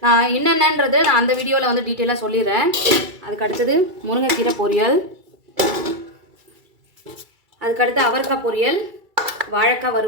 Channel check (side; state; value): left; late; 2.3 ms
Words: நான் என்னென்னன்றது நான் அந்த வீடியோவில் வந்து டீட்டெயிலாக சொல்லிடுறேன். அதுக்கடுத்தது முருங்கைக்கீரை பொரியல், அதுக்கடுத்து அவரைக்காய் பொரியல், வாழைக்காய்